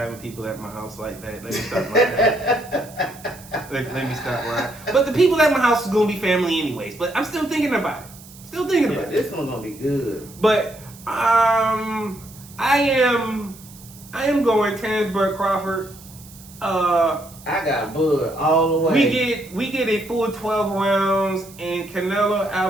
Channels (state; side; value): noise; right; hiss, 20 dB below the sound